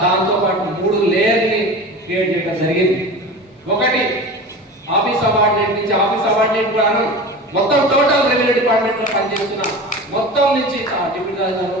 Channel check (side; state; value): both; normal; correlation 0.33